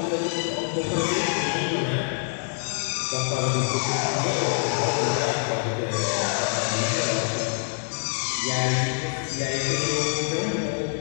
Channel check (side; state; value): right; silent; digital silence